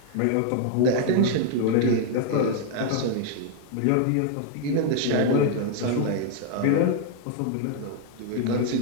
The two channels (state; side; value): different; both; correlation 0.00